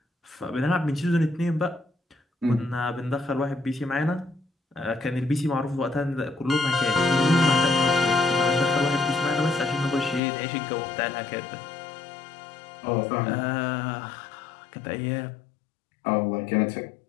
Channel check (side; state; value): right; drops out; at 10.2 s